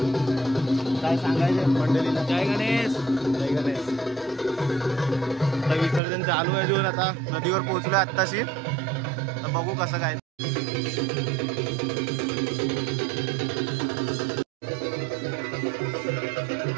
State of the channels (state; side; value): drops out; left; at 6.0 s